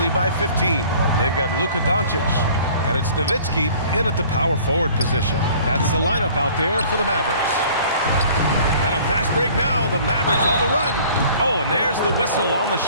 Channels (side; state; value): both; inverted; correlation -0.50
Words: by 15. They've got Luka Doncic, and it's Nowitzki in at the power forward position. That's the lineup out there for the Mavericks. And a fast break now. The Mavericks on the run. Oh, and there's the whistle on the